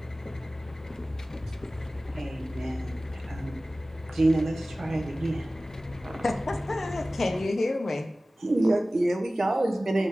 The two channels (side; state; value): both; normal; correlation 0.97